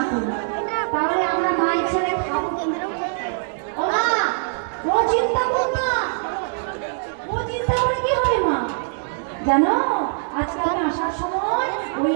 করি তাহলে আমরা মায়ের ছেলে খাবো কেন্দ্র। ও মা, ও চিন্তা করো না, ও চিন্তা করে কি হবে মা? জানো আজকে আমি আসার সময় ওই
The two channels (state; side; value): silent; left; 62 dB below the other